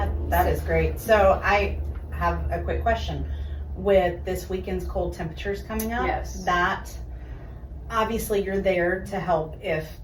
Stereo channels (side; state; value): both; identical; correlation 1.00